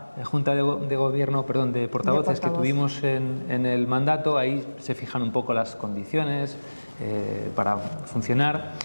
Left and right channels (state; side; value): inverted; both; correlation -1.00